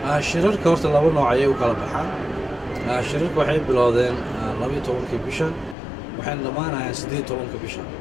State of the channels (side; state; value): right; drops out; at 5.8 s